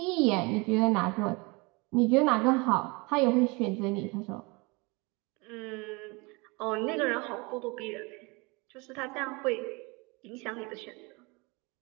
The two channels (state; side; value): quieter; left; 27.2 dB